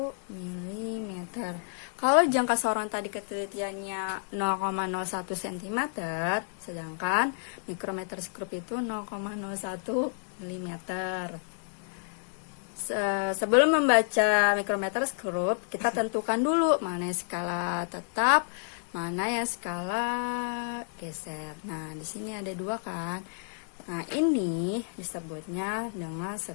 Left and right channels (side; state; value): right; silent; digital silence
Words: mm. Kalau jangka sorong tadi ketelitiannya 0,01 cm, sedangkan mikrometer scope itu 0,01 mm. Sebelum membaca mikrometer scope, kita tentukan dulu mana skala tetap, mana yang skala geser. Nah, di sini ada dua kan. Nah, ini disebutnya dengan